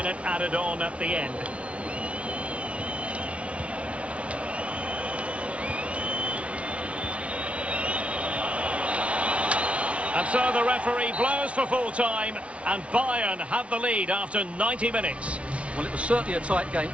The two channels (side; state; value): left; late; 0.062 ms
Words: added on at the end. And so the referee blows for full time, and Bayern have the lead after 90 minutes. Well, it was certainly a tight game,